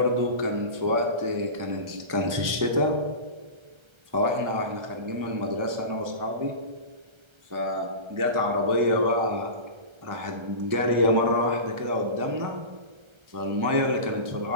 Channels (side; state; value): left; late; 1.3 ms